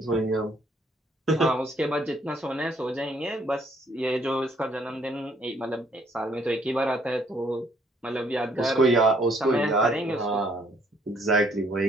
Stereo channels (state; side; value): normal; both; correlation 0.65